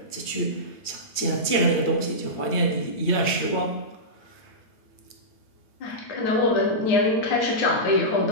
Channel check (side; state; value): right; late; 8.8 ms